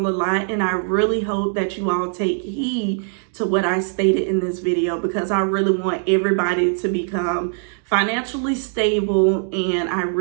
a lot, and I really hope that you all take heed to what I stated in this video, because I really want everybody to become financially stable, and I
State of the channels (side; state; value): left; silent; 62 dB below the other